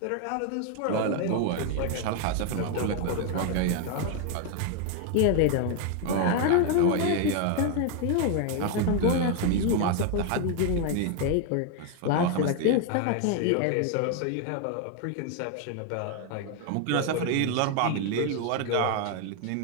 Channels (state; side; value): different; both; correlation 0.01